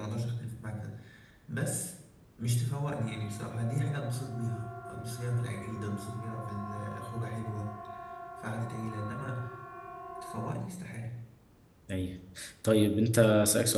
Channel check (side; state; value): both; identical; correlation 1.00